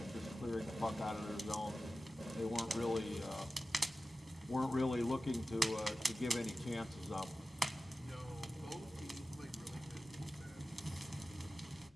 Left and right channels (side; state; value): both; normal; correlation 0.95